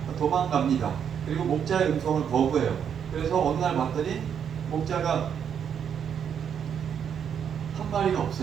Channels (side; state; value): left; quieter; 8.1 dB